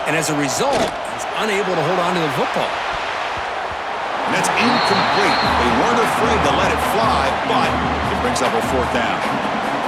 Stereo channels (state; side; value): identical; both; correlation 1.00